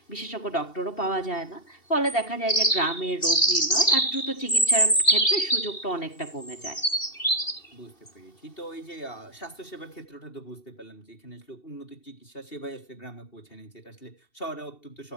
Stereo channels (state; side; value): late; right; 2.7 ms